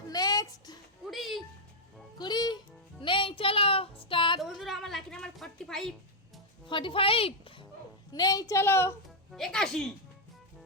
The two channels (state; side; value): normal; both; correlation -0.02